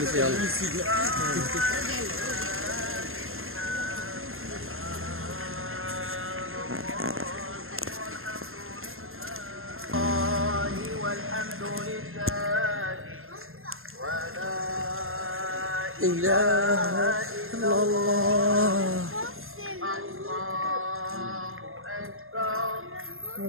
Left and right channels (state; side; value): late; left; 0.61 ms